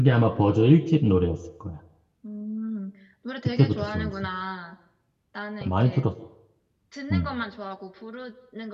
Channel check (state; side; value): identical; both; correlation 1.00